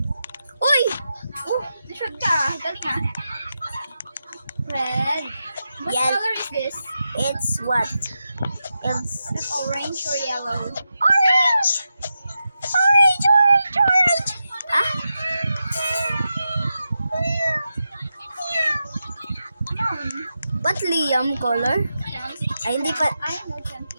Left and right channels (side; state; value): both; inverted; correlation -0.89